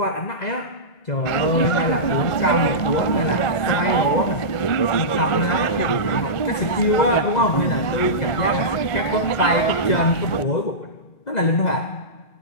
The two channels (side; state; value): right; late; 1.5 ms